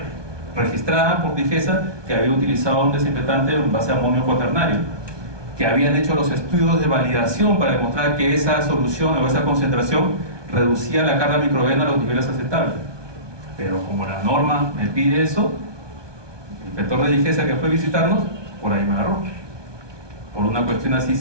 registrada por DIGESA que había utilizado un desinfectante en base a amonio cuaternario, que habían hecho los estudios de validación para demostrar que esa solución o esa concentración reducía la carga microbiana a los niveles aceptables. Pero como la norma me pide eso, el inspector de DIGESA que fue a visitarnos, por ahí me agarró. Por una cuestión así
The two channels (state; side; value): late; left; 1.2 ms